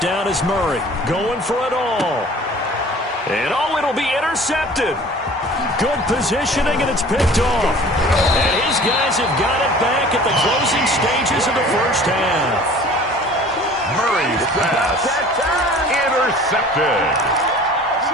is Murray. Going for it all. And it'll be intercepted. Good positioning, and it's picked off. And his guys have got it back at the closing stages of the first half. Murray's pass intercepted.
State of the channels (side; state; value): both; normal; correlation 0.46